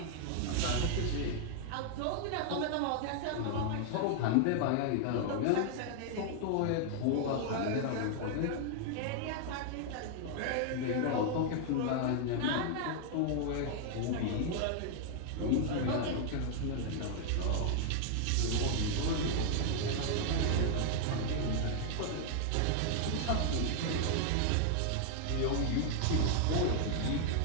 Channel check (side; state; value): both; different; correlation 0.00